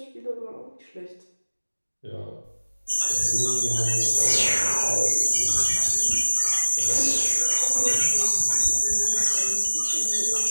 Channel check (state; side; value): inverted; both; correlation -1.00